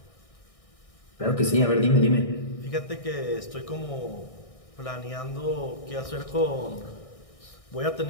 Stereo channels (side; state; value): right; late; 1.6 ms